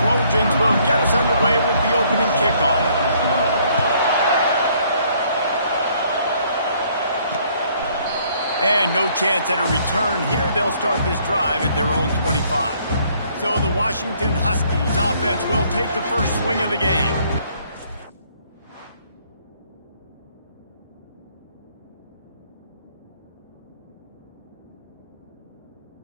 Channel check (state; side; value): inverted; both; correlation -0.64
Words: will get us underway with the opening kickoff. And no chance at a return here. They'll start this drive at their own 25. So the Washington Huskies offense will take the first swing of the game.